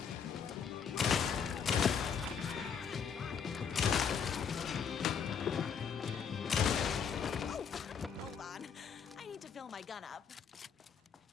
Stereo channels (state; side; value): quieter; right; 7.0 dB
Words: Hold on. I need to fill my gun up.